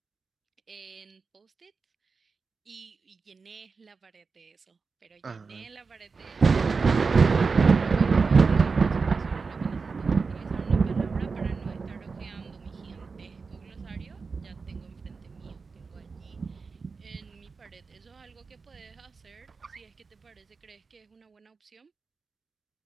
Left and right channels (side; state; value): left; quieter; 4.7 dB